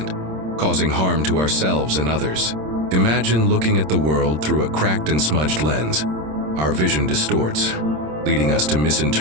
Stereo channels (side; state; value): left; late; 26 ms